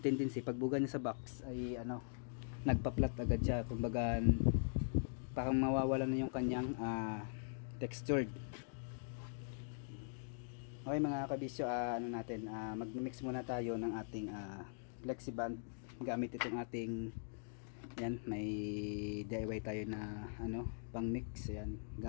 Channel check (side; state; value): right; silent; digital silence